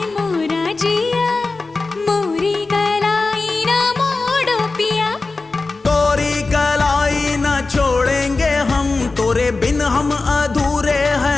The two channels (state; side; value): quieter; right; 3.7 dB